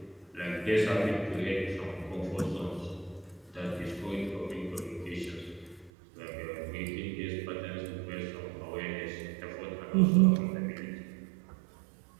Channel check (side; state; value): left; drops out; at 5.9 s